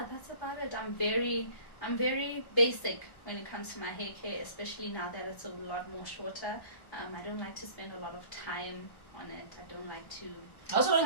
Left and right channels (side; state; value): right; late; 1.2 ms